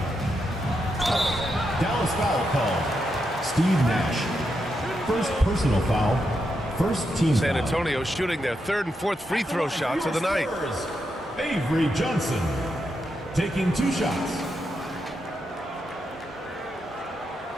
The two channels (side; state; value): both; normal; correlation 0.84